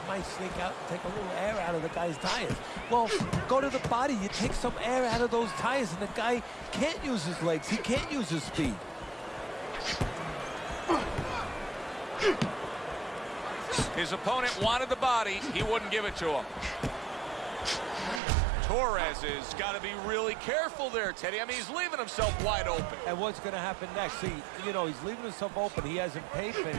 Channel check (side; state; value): left; drops out; at 18.2 s